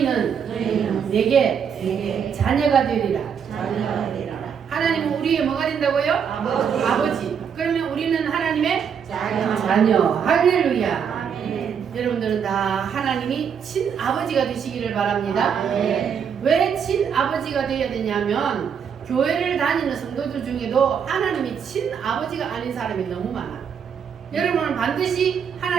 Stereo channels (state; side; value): quieter; left; 7.3 dB